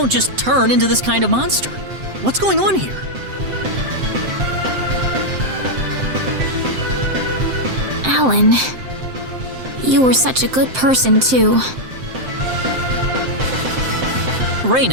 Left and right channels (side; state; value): left; late; 7.7 ms